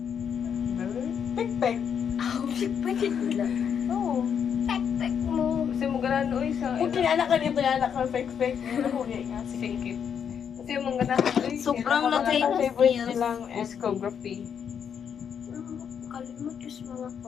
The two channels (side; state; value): right; quieter; 7.7 dB